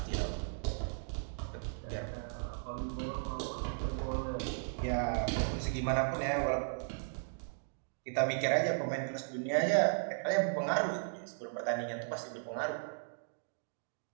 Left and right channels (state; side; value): silent; left; digital silence